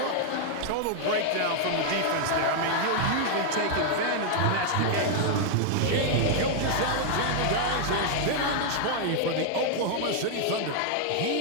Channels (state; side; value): different; both; correlation -0.01